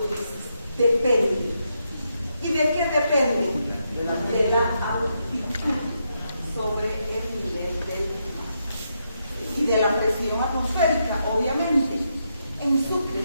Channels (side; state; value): both; inverted; correlation -0.81